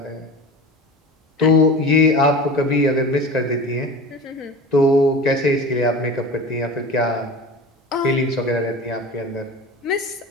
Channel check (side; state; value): both; normal; correlation 0.34